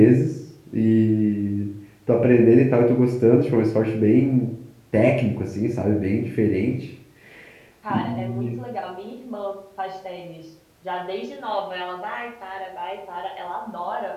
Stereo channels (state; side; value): identical; both; correlation 1.00